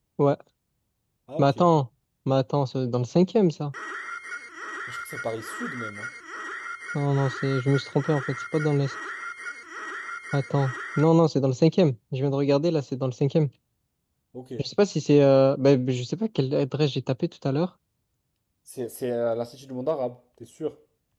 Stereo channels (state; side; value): identical; both; correlation 1.00